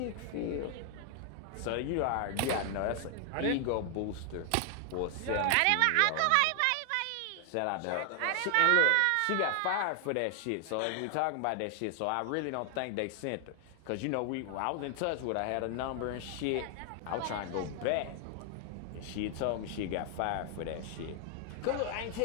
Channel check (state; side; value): different; both; correlation 0.00